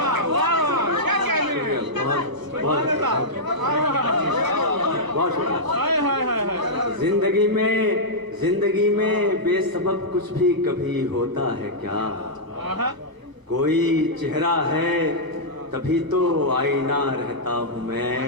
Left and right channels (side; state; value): left; late; 1.0 ms